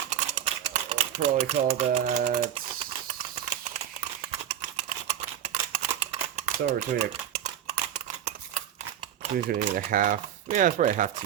Probably call that somewhere between a half, yeah, it's probably a half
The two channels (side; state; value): left; quieter; 10.3 dB